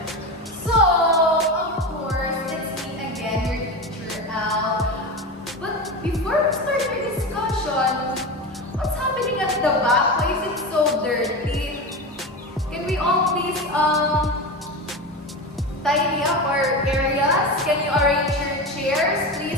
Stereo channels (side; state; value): both; normal; correlation 0.22